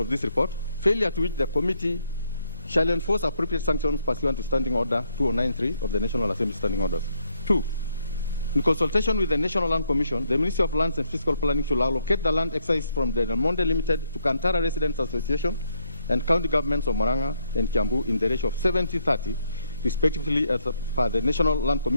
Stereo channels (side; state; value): both; inverted; correlation -0.74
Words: of this report, failure to which the committee shall enforce appropriate sanctions pursuant to Standing Order 2093 of the National Assembly Standing Orders. 2. In consultation with the National Land Commission, the Ministry of Lands and Fiscal Planning should allocate the land excised from the Del Monte Limited to Kantara Residents Association and county governments of Murang'a and Kiambu in the ratio of 70-30, respectively, as per the National Land